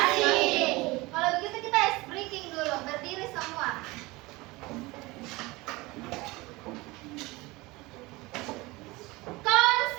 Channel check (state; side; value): quieter; left; 22.2 dB